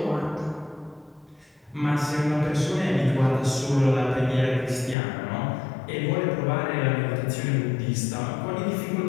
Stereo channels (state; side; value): drops out; right; at 5.0 s